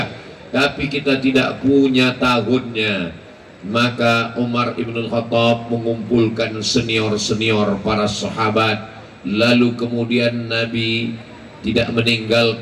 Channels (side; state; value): both; identical; correlation 1.00